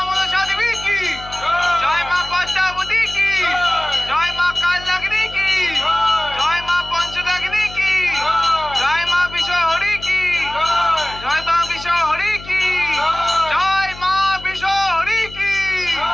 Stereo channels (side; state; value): left; noise; hum, 16 dB below the sound